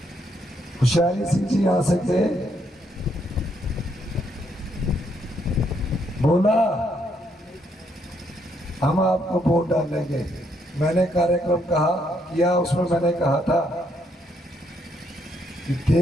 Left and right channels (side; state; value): both; normal; correlation 0.74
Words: होशियारी सिंह जी आ सकते, बोला हम आपको वोट डालेंगे। मैंने कार्यक्रम कहा किया, उसमें मैंने कहा था कि